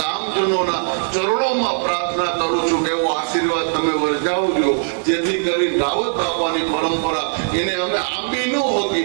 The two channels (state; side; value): silent; left; digital silence